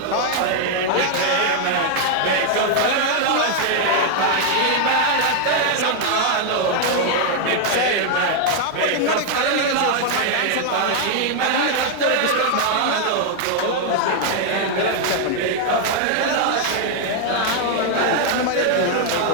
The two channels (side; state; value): both; different; correlation 0.00